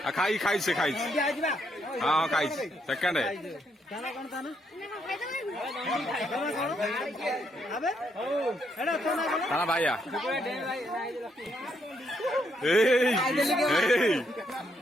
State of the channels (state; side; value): normal; both; correlation 0.75